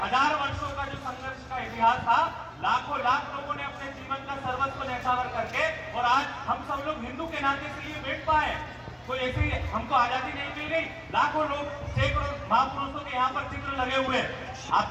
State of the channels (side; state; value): both; identical; correlation 1.00